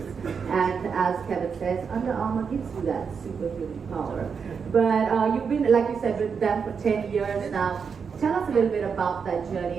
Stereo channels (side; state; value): left; quieter; 6.1 dB